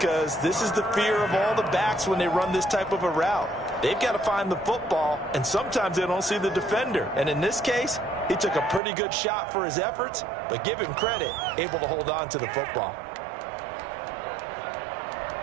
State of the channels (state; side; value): drops out; left; at 8.8 s